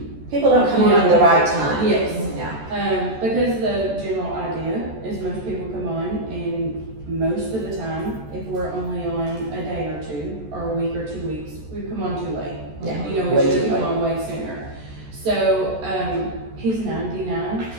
People don't come on at the right time. Yes. Yeah. Because the general idea is most people come on, and most of the time, if we're only on a day or two, or a week or 2 weeks, we come on too late. Yeah. We Way should too come late. on way sooner. So, he's 99,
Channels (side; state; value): left; late; 14 ms